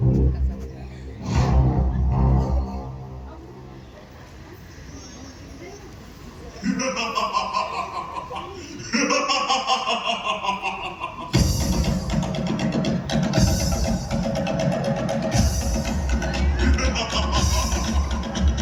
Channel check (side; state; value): both; identical; correlation 1.00